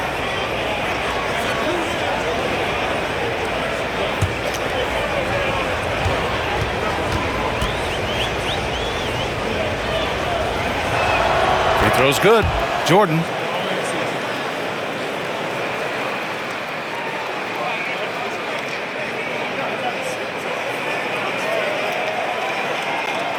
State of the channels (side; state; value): both; identical; correlation 1.00